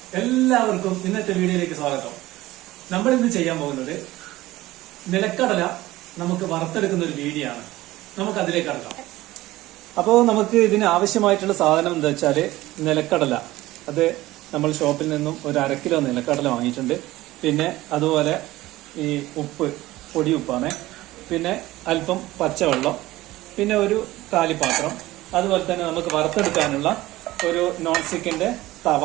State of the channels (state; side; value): quieter; left; 17.4 dB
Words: എല്ലാവർക്കും ഇന്നത്തെ വീഡിയോയിലേക്ക് സ്വാഗതം. നമ്മൾ ഇന്ന് ചെയ്യാൻ പോകുന്നത് നിലക്കടല നമുക്ക് വറുത്തെടുക്കുന്ന ഒരു വീഡിയോ ആണ്. നമുക്ക് അതിലേക്ക് കടക്കാം. അപ്പോൾ നമുക്ക് ഇതിന് ആവശ്യമായിട്ടുള്ള സാധനം എന്താ വെച്ചാല് നിലക്കടല. അത് നമ്മൾ ഷോപ്പിൽ നിന്നും ഒരു 1/2 കിലോ നിലക്കടല വാങ്ങിയിട്ടുണ്ട്. പിന്നെ അതുപോലെ ഈ ഉപ്പ്, പൊടി ഉപ്പാണ്. പിന്നെ അല്പം പച്ചവെള്ളം, പിന്നെ ഒരു കാലിപ്പാത്രം. അതുപോലെ തന്നെ നമുക്ക് വറുത്തെടുക്കാനുള്ള ഒരു നോൺ സ്റ്റിക്കിന്റെ തവ.